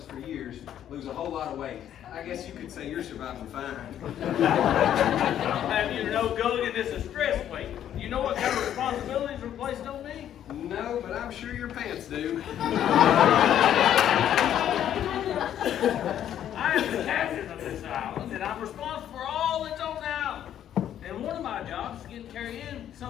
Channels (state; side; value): quieter; right; 10.6 dB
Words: for years lose a whole lot of weight. I guess you could say you're surviving fine. I'll have you to know, Gulligan, this is stress weight. You know what kind of responsibilities are placed on me? No, but I'm sure your pants do. I am the captain of this island, and I'm responsible for all that's on the island. And one of my jobs is getting Carrie Ann